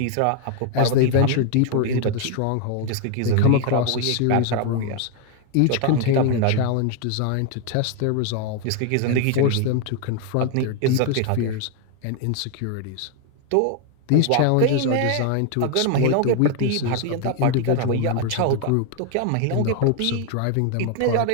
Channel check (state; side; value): different; both; correlation 0.01